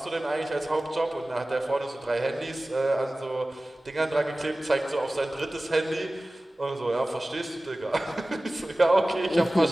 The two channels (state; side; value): normal; both; correlation 0.97